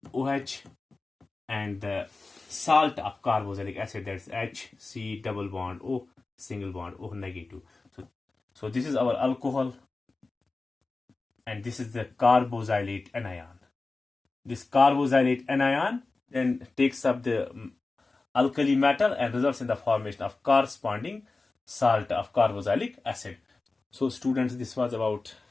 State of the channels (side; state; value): right; quieter; 3.6 dB